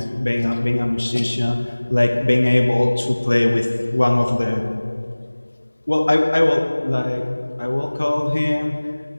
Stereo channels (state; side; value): inverted; both; correlation -1.00